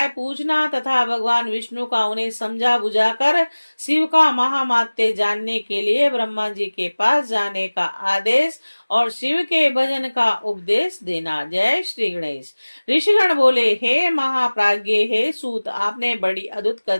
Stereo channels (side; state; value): both; inverted; correlation -1.00